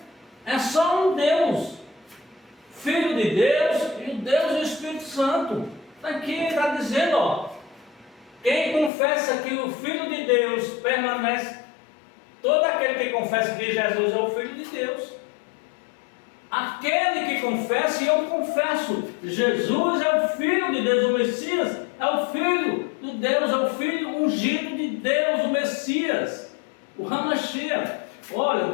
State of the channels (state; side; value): drops out; right; at 8.9 s